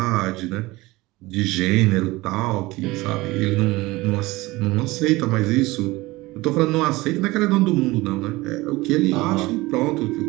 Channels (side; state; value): left; quieter; 20.6 dB